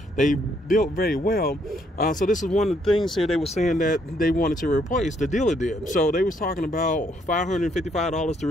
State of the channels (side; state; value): both; normal; correlation 0.71